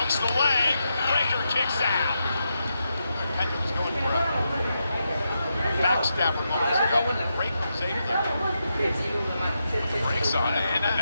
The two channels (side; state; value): both; inverted; correlation -0.85